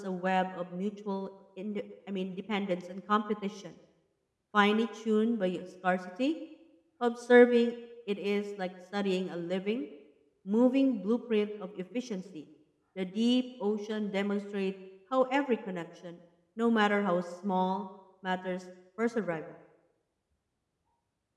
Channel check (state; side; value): identical; both; correlation 1.00